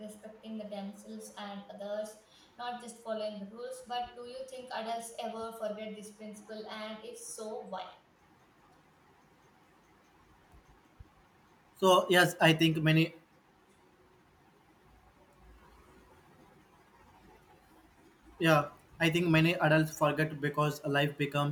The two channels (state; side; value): identical; both; correlation 1.00